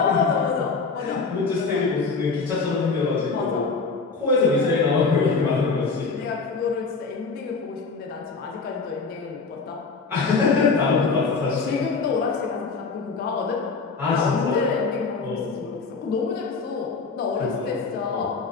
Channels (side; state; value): right; quieter; 4.5 dB